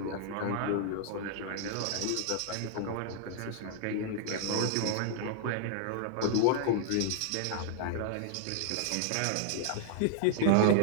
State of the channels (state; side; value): different; both; correlation 0.00